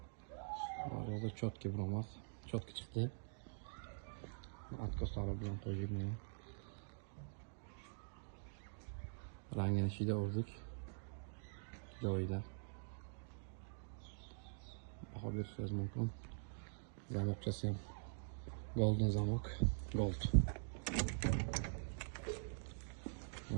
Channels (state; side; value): silent; left; digital silence